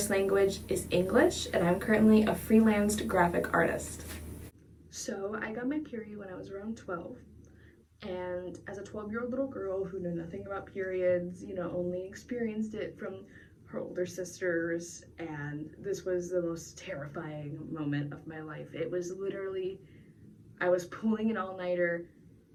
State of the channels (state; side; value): identical; both; correlation 1.00